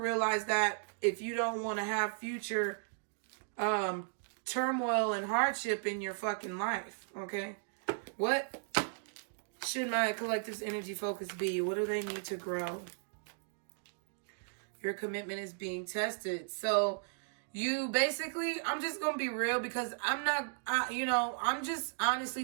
that if you don't want to have future turmoil and hardship in your fucking life. Okay? What should my collective's energy focus be? What do they need to grow? Your commitment is being tested. So you basically, I'm just going to be real, because I'm just,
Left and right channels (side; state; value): left; silent; digital silence